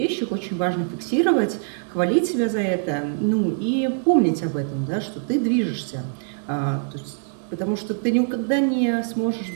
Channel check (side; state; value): left; silent; digital silence